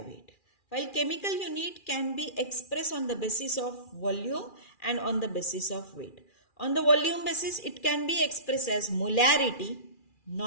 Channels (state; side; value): late; right; 2.4 ms